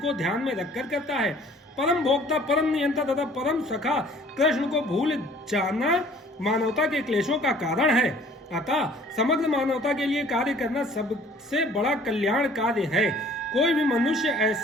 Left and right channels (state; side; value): normal; both; correlation 0.54